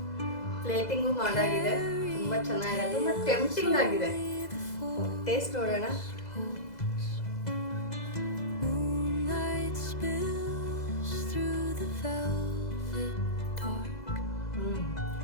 ಪ್ಲೇಟಿಂಗು ಮಾಡಾಗಿದೆ. ತುಂಬಾ ಚೆನ್ನಾಗಿದೆ, ತುಂಬಾ ಟೆಂಪ್ಟಿಂಗ್ ಆಗಿದೆ. ಟೇಸ್ಟ್ ನೋಡೋಣ. Moonlight spills through the velvet dark.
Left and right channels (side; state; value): right; late; 2.0 ms